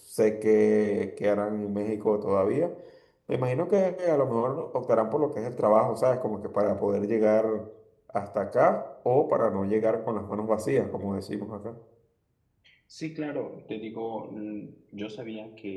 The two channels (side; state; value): both; identical; correlation 1.00